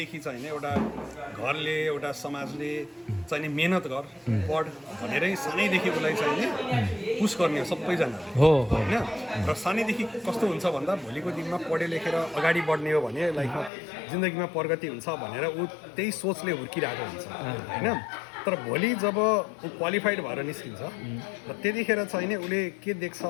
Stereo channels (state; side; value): drops out; right; at 13.7 s